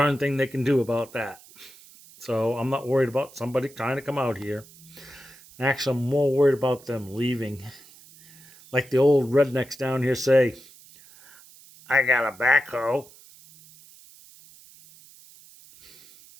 thing they can do about that. So I'm not worried about somebody trying to come out here. Actually, I'm more worried about them leaving. Like the old rednecks down here say, I got a backhoe.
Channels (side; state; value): right; noise; hiss, 23 dB below the sound